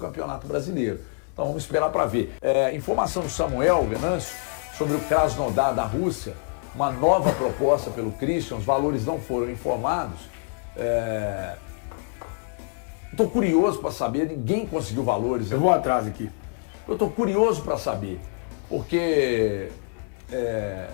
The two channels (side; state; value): right; quieter; 37.8 dB